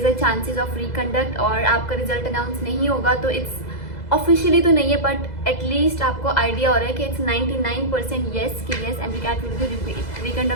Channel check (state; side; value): late; right; 2.0 ms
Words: is a chances of reconduct और आपका रिजल्ट अनाउंस नहीं होगा, तो इट्स ऑफिशियली तो नहीं है बट एटलीस्ट आपको आइडिया हो रहा है कि इट्स 99% येस कि yes MDCAT will be